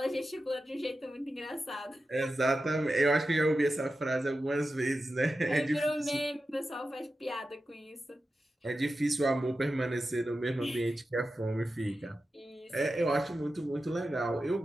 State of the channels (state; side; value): normal; both; correlation 0.92